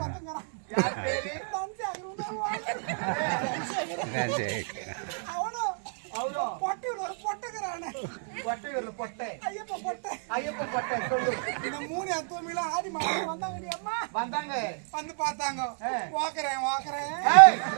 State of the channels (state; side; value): silent; left; 58 dB below the other